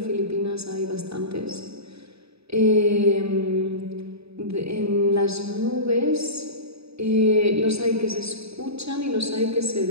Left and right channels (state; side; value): late; left; 0.78 ms